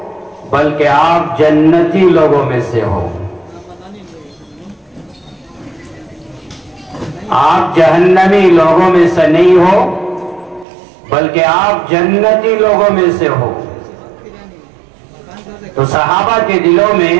بلکہ آپ جنتی لوگوں میں سے ہو. آپ جہنمی لوگوں میں سے نہیں ہو بلکہ آپ جنتی لوگوں میں سے ہو. تو صحابہ کے دلوں میں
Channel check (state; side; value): drops out; left; at 10.7 s